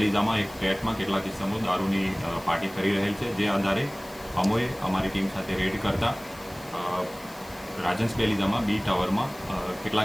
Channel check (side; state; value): left; noise; hiss, 22 dB below the sound